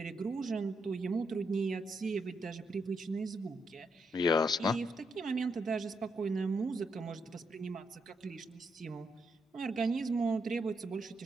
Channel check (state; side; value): normal; both; correlation 0.80